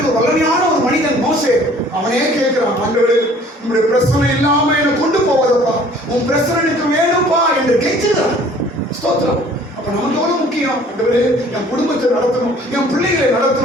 ஒரு வல்லமையான ஒரு மனிதன் மோசே. அவனே கேட்கிறான், ஆண்டவரே உங்களுடைய பிரச்சனை இல்லாம என்னை கொண்டு போவதப்பா, உன் பிரச்சனை எனக்கு வேணும்பா என்று கேட்கிறான். ஸ்தோத்திரம். அப்ப நமக்கு எவ்வளவு முக்கியம், ஆண்டவரே என் குடும்பத்தை நடத்தணும், என் பிள்ளைகளை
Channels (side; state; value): both; normal; correlation 0.54